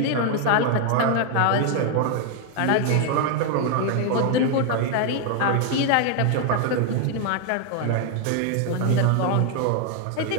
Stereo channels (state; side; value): different; both; correlation 0.01